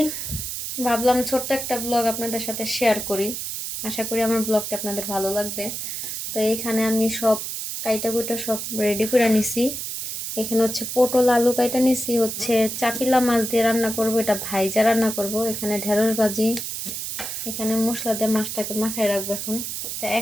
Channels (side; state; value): right; noise; hiss, 5 dB below the sound